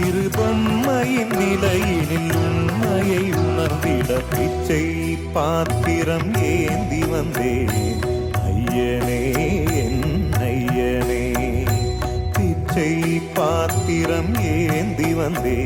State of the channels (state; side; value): identical; both; correlation 1.00